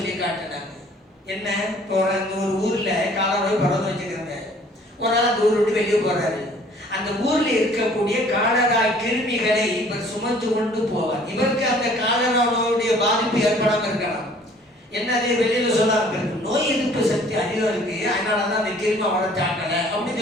காட்டினாங்க. என்ன, அந்த ஒரு ஊர்ல காலரா பரவ வச்சுக்கிறாங்க. ஒரு நாள் அந்த ஊர் விட்டு வெளியே போறாரு. அந்த ஊர்ல இருக்கக்கூடிய காலரா கிருமிகளை இவர் சுமந்து கொண்டு போவார். இவருக்கு அந்த காலரா நோயுடைய பாதிப்பு ஏற்படாம இருக்கலாம். என்ன, அதே வெளியில சொல்லாம இருக்கு, நோய் எதிர்ப்பு சக்தி அதிகம் இருக்கு, அதனாலதான் அந்த கிருமி அவரை தாக்கல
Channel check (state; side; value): normal; both; correlation 0.55